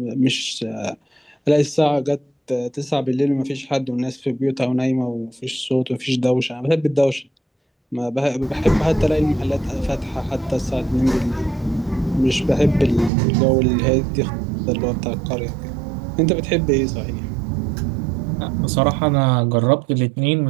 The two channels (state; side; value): drops out; left; at 13.1 s